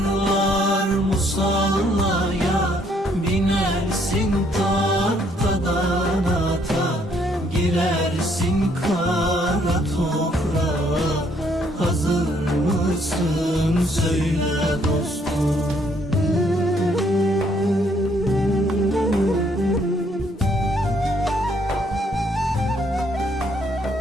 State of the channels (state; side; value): normal; both; correlation 0.68